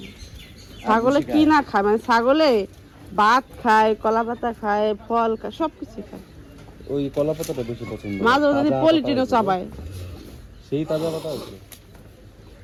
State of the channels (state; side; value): identical; both; correlation 1.00